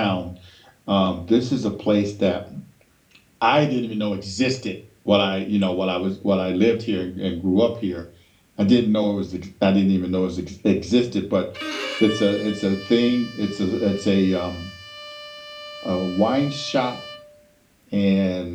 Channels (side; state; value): both; identical; correlation 1.00